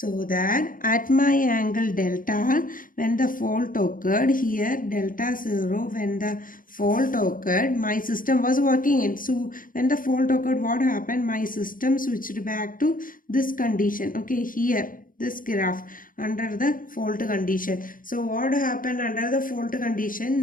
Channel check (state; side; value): late; right; 0.40 ms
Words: that at my angle delta, when the fault occurred, here delta 0, when the fault occurred, my system was working in. So when the fault occurred, what happened? My system switched back to this condition. Okay, here this graph under the fault condition. So what happened under the fault